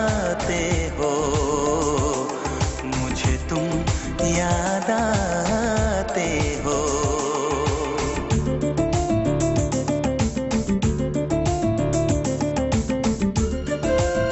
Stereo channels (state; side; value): identical; both; correlation 1.00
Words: हो, मुझे तुम याद आते हो।